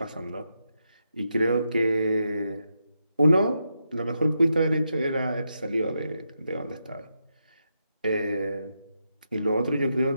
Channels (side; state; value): both; inverted; correlation -0.84